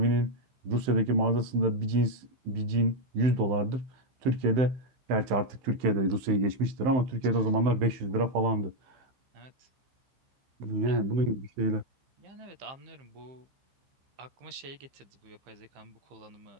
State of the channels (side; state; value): left; late; 15 ms